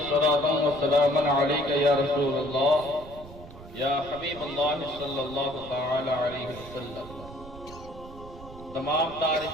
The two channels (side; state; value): right; noise; rumble, 16 dB below the sound